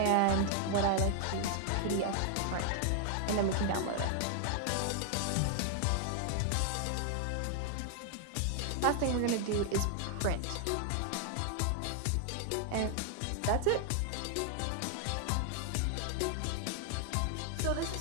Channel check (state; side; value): different; both; correlation 0.00